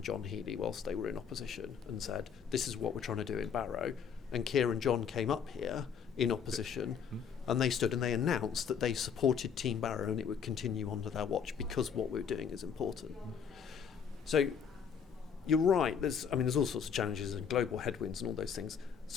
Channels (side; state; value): right; quieter; 7.1 dB